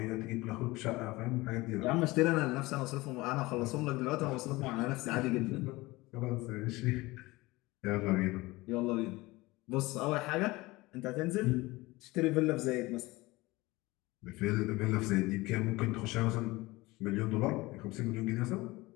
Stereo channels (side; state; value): right; quieter; 21.1 dB